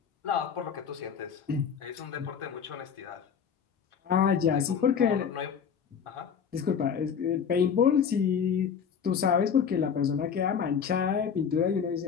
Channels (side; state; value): right; quieter; 7.2 dB